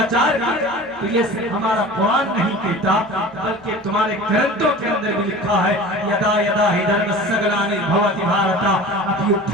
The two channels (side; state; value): both; normal; correlation 0.38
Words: کیا, تو یہ صرف ہمارا قرآن نہیں کہتا بلکہ تمہارے گرنتھوں کے اندر بھی لکھا ہے, یدا یدا ہی دھرمسگلانی بھوتی بھارتا